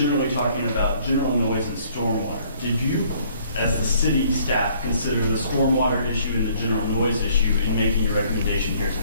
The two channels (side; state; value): both; inverted; correlation -0.61